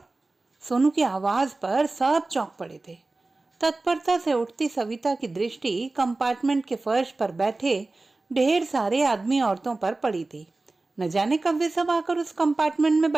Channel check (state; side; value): quieter; left; 3.2 dB